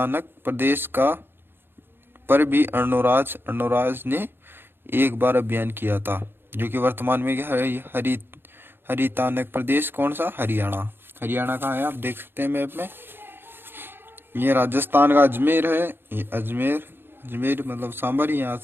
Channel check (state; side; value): late; left; 0.10 ms